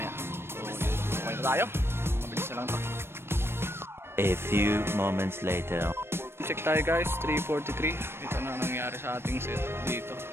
So, okay na tayo. Lang to. A few moments later. Check tayo guys, 3:43. Ito na nangyari sa ating set dito.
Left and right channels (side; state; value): left; late; 0.12 ms